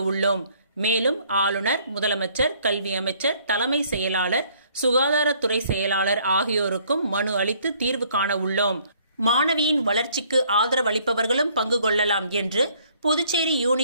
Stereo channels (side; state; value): both; inverted; correlation -0.62